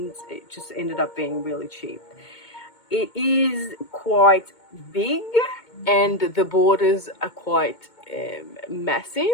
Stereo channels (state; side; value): late; right; 2.2 ms